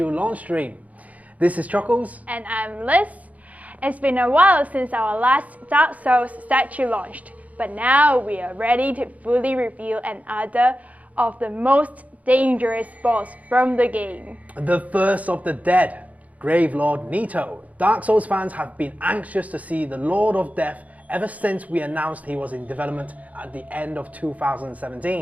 launch stream. This is Chuckles. And I'm Liz. It's been a while since our last Dark Souls statue launched, but now we are ready to fully reveal another of the most dangerous boss from the game. The first of the dead, Gravelord Nito. Dark Souls fans have been anxious to see the Lord of Death ever since we announced he was in development at the end of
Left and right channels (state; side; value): late; left; 0.071 ms